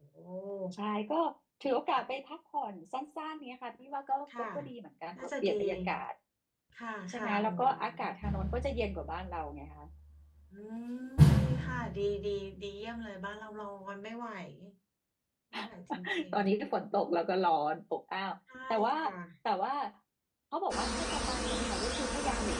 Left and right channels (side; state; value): both; identical; correlation 1.00